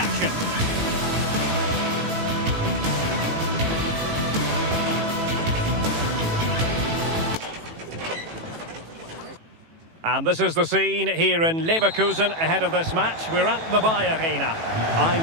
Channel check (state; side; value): late; left; 18 ms